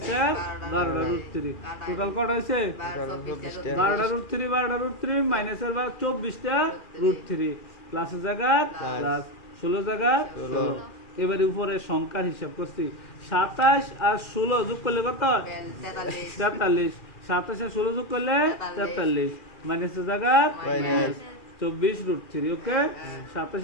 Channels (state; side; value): late; right; 2.4 ms